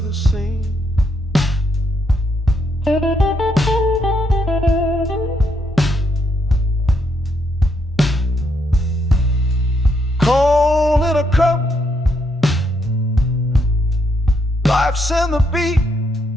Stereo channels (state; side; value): normal; both; correlation 0.76